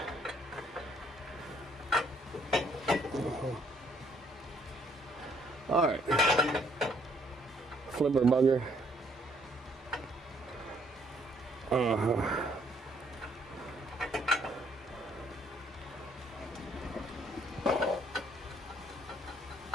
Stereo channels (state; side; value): normal; both; correlation 0.66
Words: All right, flipper bugger.